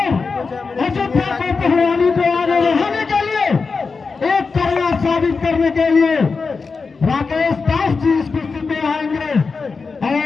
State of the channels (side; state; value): right; quieter; 4.6 dB